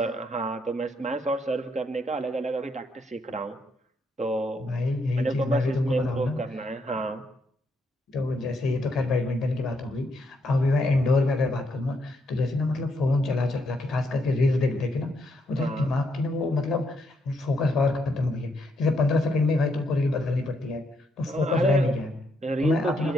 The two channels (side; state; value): both; normal; correlation 0.76